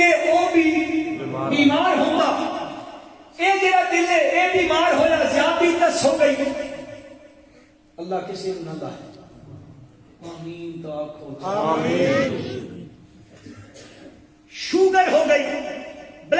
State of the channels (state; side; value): identical; both; correlation 1.00